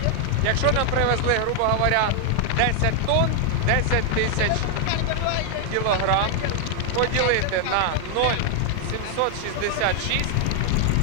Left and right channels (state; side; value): different; both; correlation 0.00